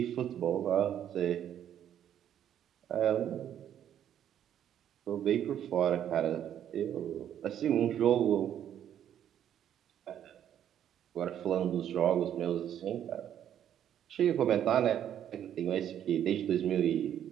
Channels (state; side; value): quieter; left; 10.1 dB